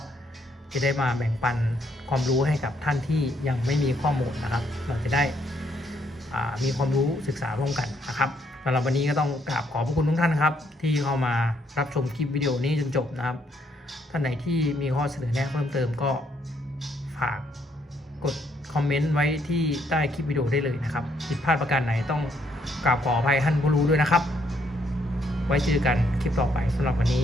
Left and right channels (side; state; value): both; normal; correlation 0.72